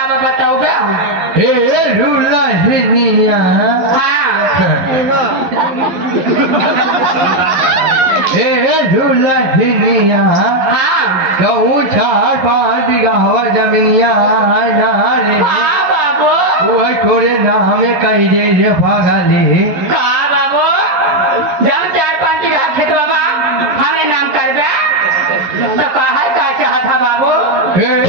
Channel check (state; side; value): late; left; 11 ms